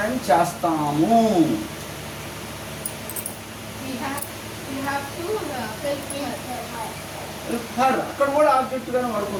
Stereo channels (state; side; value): identical; both; correlation 1.00